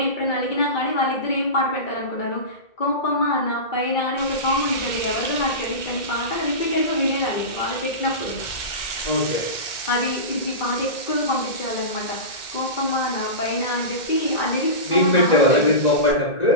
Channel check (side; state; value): right; late; 1.9 ms